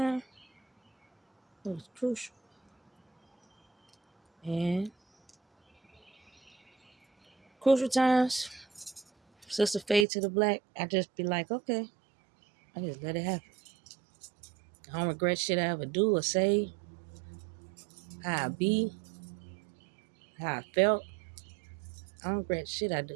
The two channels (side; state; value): left; drops out; at 10.1 s